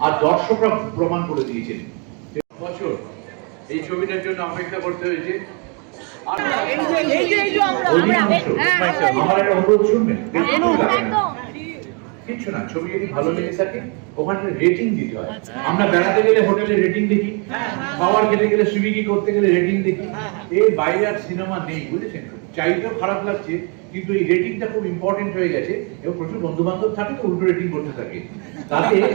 আর দর্শকরা প্রমাণ করে দিয়েছেন। বছর এই ছবিটার জন্য অপেক্ষা করতে হয়েছে। আমার একটা অনুরোধ শুনবেন, কিচ্ছু না, ছবি যদি ভালো লেগে থাকে ওখানে রেটিং দিতে হয়। আমরা বেড়াতে গেলে হোটেলে রেটিং দেখি, খাবার খেতে গেলে সুইগি করতে গেলে রেটিং দেখি। এর বাইরে আর সিনেমা নেই, বুঝেছেন? চাইতেও খারাপ লাগছে, কিন্তু এই রেটিংটা খুব ইম্পর্টেন্ট হয়ে গেছে। এবং প্রচুর বন্ধু বান্ধব থাকে তো উল্টো রেটিং করতে থাকে, তাতে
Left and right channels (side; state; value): left; quieter; 35.3 dB